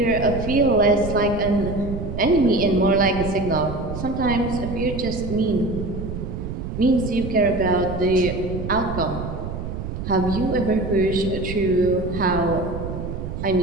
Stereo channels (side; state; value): right; noise; rumble, 6 dB below the sound